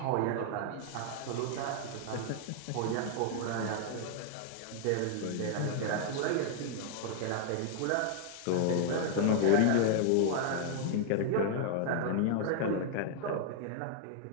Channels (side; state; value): both; different; correlation 0.00